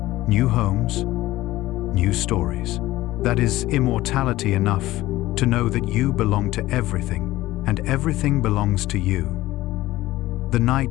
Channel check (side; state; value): right; quieter; 16.7 dB